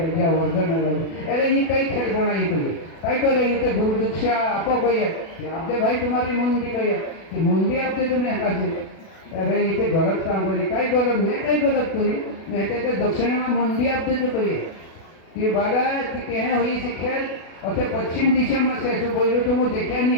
जियो अर्जुन आयला अरे ये कई खेल बनाई तो कई करे ये तो गुरु दीक्षा आपो कहिए आपदे भाई तुम्हारी मुंडी कहिए कि मुंडी आपदे तुम्हें हकाजे अरे ये तो गलत काम करे कई गलत मैं कई गलत करी मैं तो दक्षिण में मुंडी आपदे जो कहिए कि बाला कि कहे हुई सी खेल और पश्चिम दिशा में से तो बोलो तो वो देखा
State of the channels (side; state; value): right; late; 37 ms